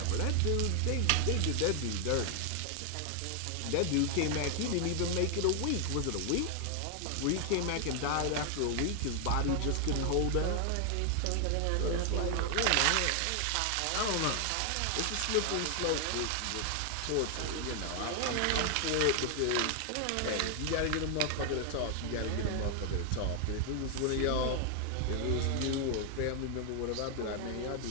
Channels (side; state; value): both; different; correlation 0.00